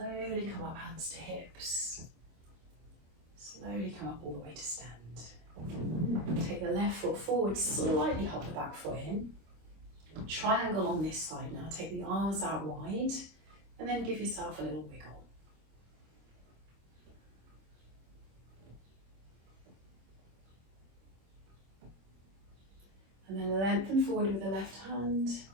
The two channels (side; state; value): left; late; 26 ms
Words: come up, hands to hips. Slowly come up all the way to stand. Take the left foot forward, slightly hop the back foot in. Triangle on this side now, take the arms out wide, and then give yourself a little wiggle. And then lengthen forward with the left hand,